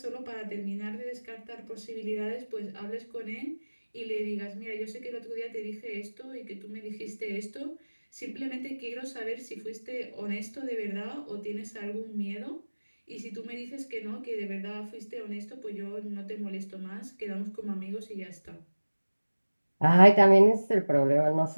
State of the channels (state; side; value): inverted; both; correlation -1.00